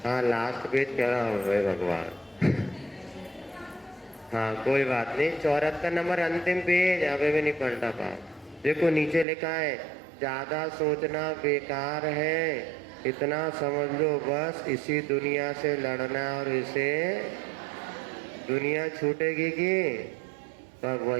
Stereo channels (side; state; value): left; drops out; at 9.2 s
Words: हाँ, लास्ट पेज क्या है भगवान। हाँ कोई बात नहीं, 74 नंबर अंतिम पेज, अभी भी नहीं पलटा पा। देखो नीचे लिखा है, ज्यादा सोचना बेकार है, इतना समझ लो बस, इसी दुनिया से लड़ना और इसे। दुनिया छूटेगी कि तब